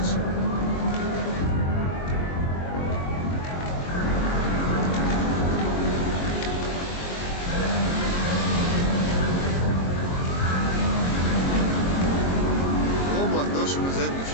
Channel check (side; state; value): right; late; 22 ms